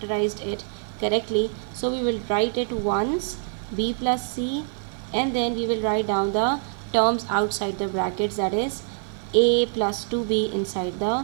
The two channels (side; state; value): left; silent; 62 dB below the other